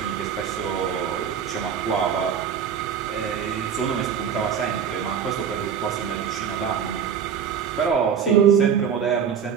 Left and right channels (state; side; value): quieter; left; 7.6 dB